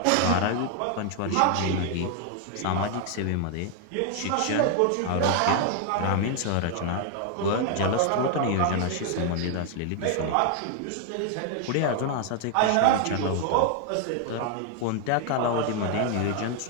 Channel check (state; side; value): different; both; correlation 0.00